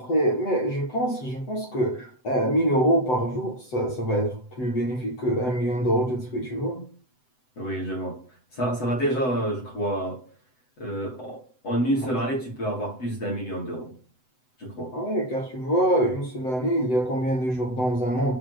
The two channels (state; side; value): late; right; 7.9 ms